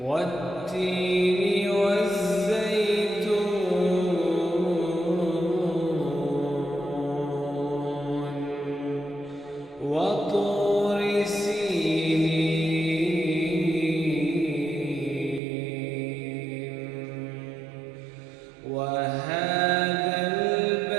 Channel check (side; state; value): left; drops out; at 15.4 s